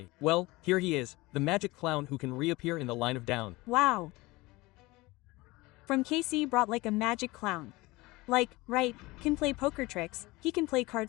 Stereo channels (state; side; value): quieter; right; 21.5 dB